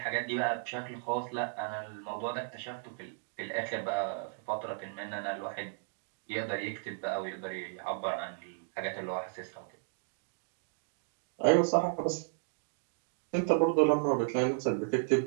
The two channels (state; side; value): silent; left; digital silence